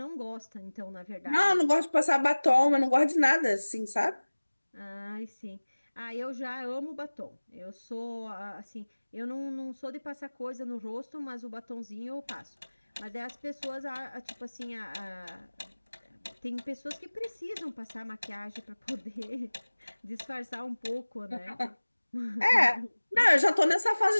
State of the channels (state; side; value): inverted; both; correlation -1.00